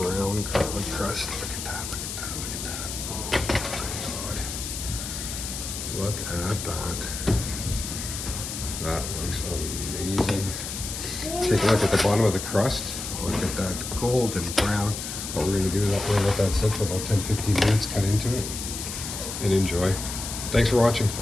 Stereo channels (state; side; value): noise; left; hiss, 6 dB below the sound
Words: garlic crust. Look at that, look at that, look at that. Oh my God. Look at that. That looks amazing. Take a look at the bottom of the crust. Look at that golden brown. What we're gonna do is we're gonna let that sit for about 10-15 minutes, cut into it, and enjoy. Thanks for watching.